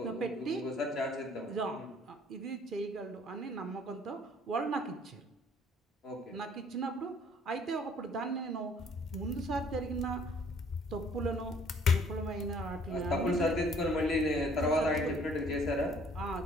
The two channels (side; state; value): both; normal; correlation 0.58